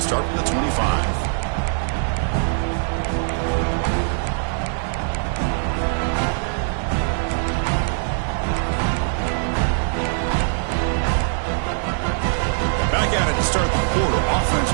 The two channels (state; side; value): silent; left; digital silence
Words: start from the 25. Back at it to start the quarter. Offense